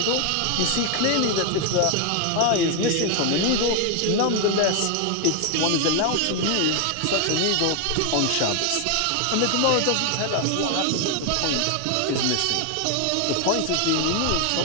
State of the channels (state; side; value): different; both; correlation 0.01